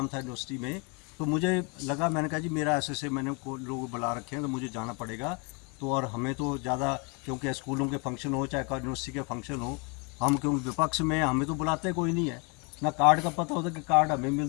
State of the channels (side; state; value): right; quieter; 32.5 dB